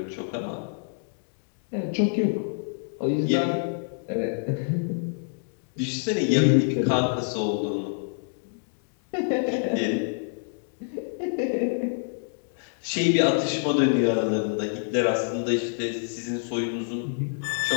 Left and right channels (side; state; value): right; silent; digital silence